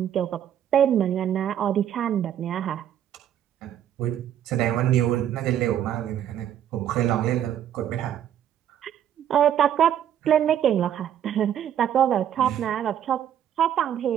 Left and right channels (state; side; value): quieter; left; 10.2 dB